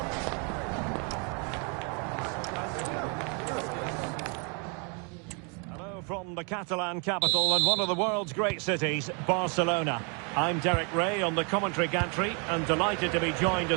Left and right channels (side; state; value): left; quieter; 36.1 dB